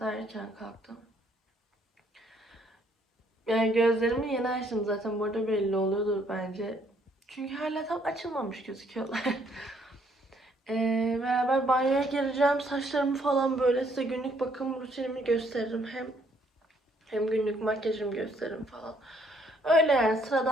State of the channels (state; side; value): normal; both; correlation 0.67